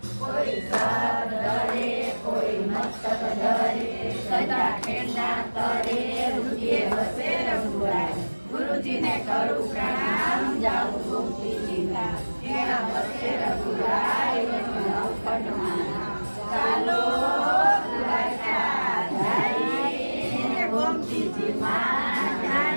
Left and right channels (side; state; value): both; inverted; correlation -1.00